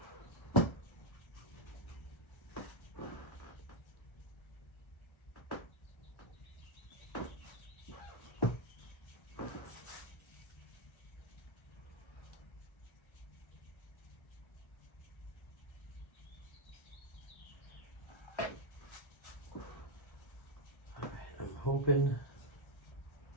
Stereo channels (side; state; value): right; late; 1.3 ms